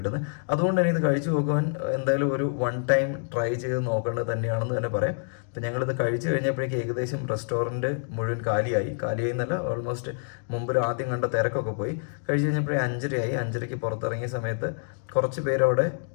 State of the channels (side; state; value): right; silent; 60 dB below the other